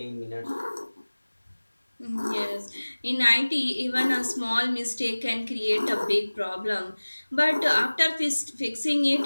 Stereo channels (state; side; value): inverted; both; correlation -1.00